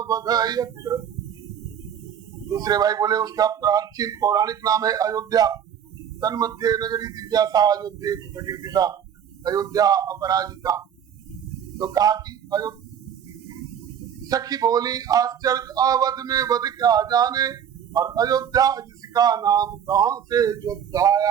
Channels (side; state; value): left; quieter; 8.8 dB